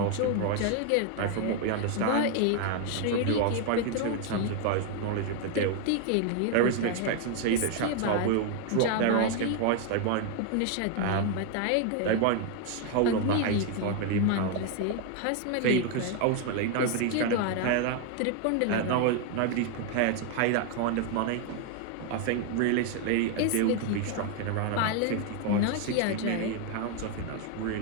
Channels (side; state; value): both; different; correlation 0.01